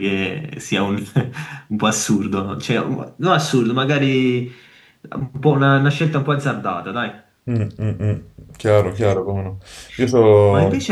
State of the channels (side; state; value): both; identical; correlation 1.00